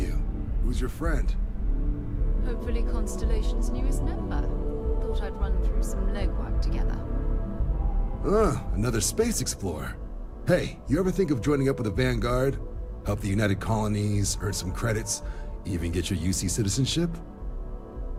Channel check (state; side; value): identical; both; correlation 1.00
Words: Who's your friend? Hopefully Constellation's newest member. Thought I'd run through some legwork together. Another space explorer. Hey, you ever think of joining up with the Vanguard? Help the United Colonies, earn some credits, even get your UC citizenship?